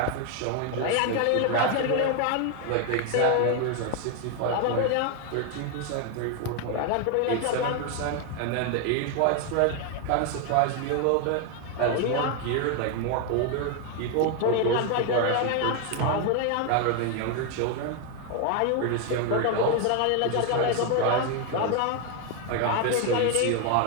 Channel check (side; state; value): both; different; correlation 0.01